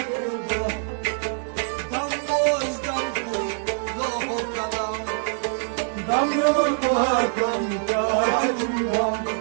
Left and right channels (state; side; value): silent; left; digital silence